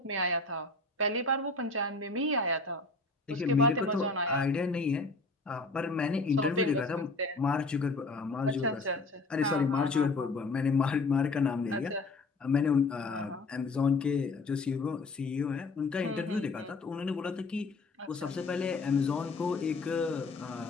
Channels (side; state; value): right; quieter; 3.5 dB